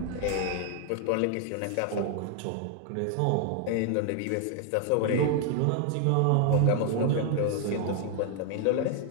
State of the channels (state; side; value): different; both; correlation 0.00